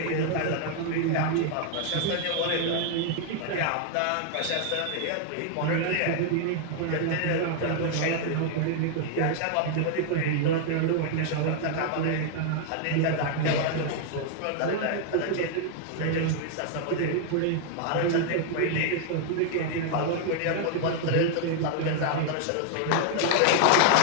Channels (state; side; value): different; both; correlation 0.00